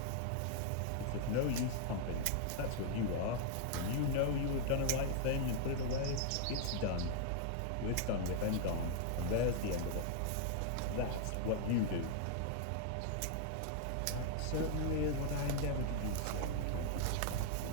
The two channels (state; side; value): different; both; correlation 0.00